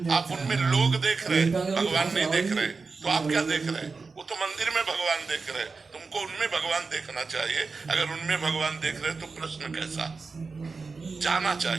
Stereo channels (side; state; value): left; quieter; 4.4 dB